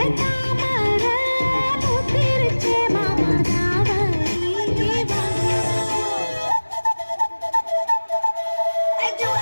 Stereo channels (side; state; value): both; inverted; correlation -1.00